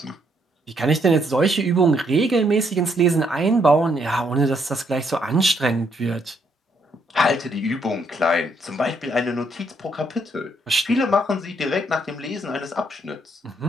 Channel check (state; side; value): normal; both; correlation 0.72